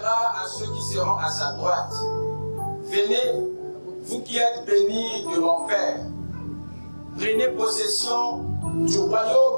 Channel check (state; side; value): inverted; both; correlation -1.00